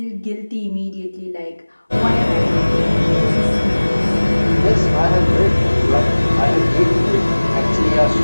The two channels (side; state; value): both; inverted; correlation -1.00